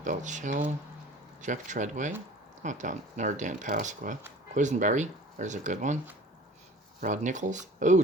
Belchell. Jeff Treadway. Oh, Dan Pasqua. Quisenberry. There's a good one. Rod Nichols. Oh,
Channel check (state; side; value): normal; both; correlation 0.45